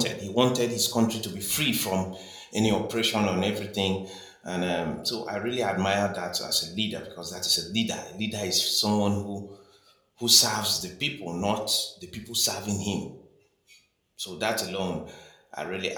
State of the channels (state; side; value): identical; both; correlation 1.00